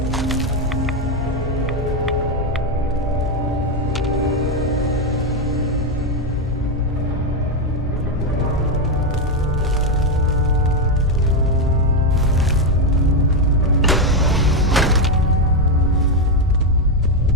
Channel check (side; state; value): both; normal; correlation 0.06